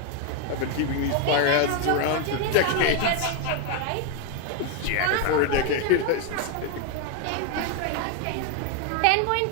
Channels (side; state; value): both; different; correlation 0.01